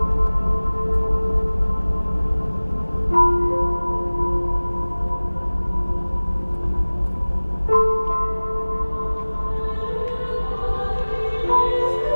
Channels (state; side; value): inverted; both; correlation -1.00